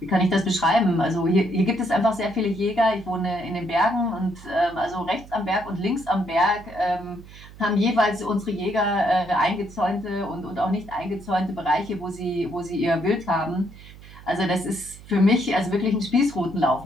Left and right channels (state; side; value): noise; right; hum, 19 dB below the sound